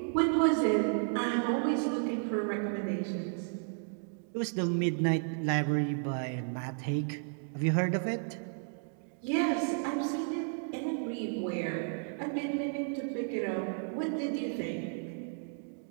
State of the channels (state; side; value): silent; left; 56 dB below the other